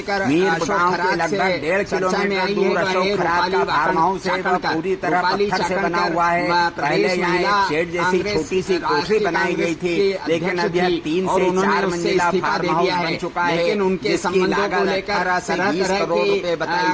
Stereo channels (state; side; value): identical; both; correlation 1.00